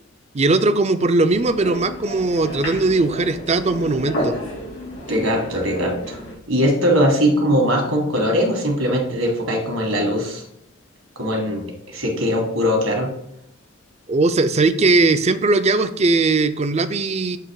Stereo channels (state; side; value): normal; both; correlation 0.41